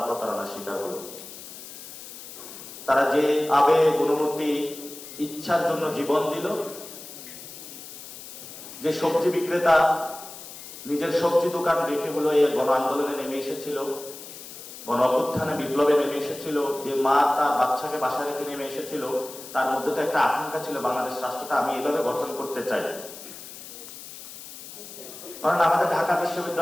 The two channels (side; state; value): left; noise; hiss, 14 dB below the sound